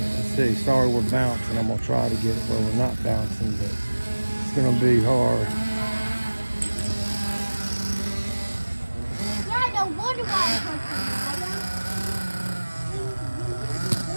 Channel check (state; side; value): inverted; both; correlation -1.00